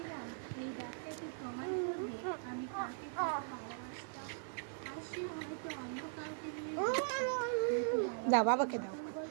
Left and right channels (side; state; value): left; silent; 51 dB below the other